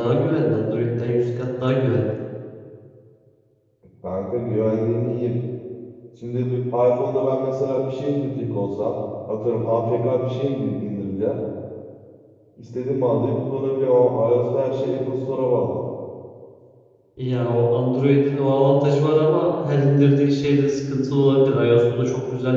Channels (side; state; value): both; identical; correlation 1.00